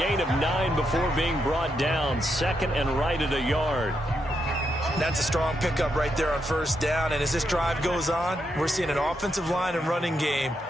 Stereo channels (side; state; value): both; normal; correlation 0.82